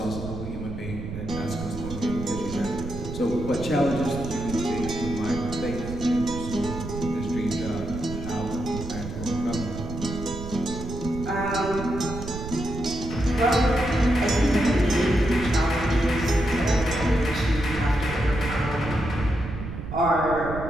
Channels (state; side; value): noise; right; rumble, 8 dB below the sound